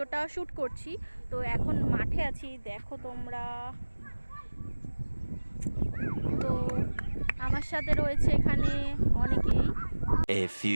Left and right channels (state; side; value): inverted; both; correlation -1.00